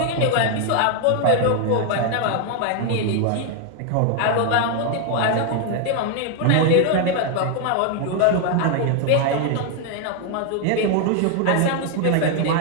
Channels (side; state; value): both; different; correlation 0.00